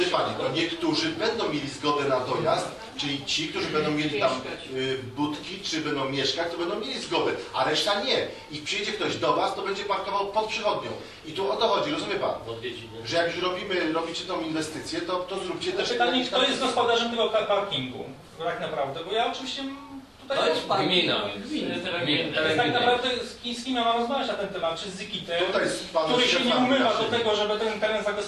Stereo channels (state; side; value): identical; both; correlation 1.00